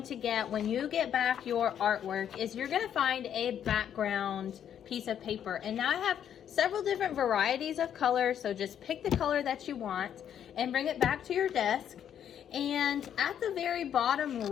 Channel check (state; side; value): quieter; right; 9.4 dB